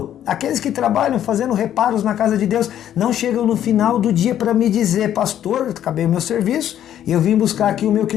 Aqueles que trabalham fazendo reparos na casa de Deus não chegam no final do dia para me dizer, pastor, acabei o meu serviço e eu vim buscar aqui o meu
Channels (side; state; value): right; quieter; 10.9 dB